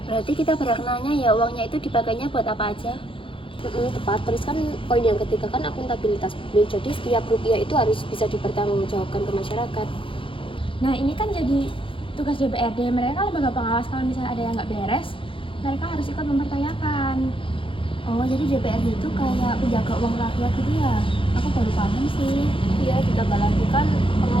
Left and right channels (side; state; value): right; late; 0.25 ms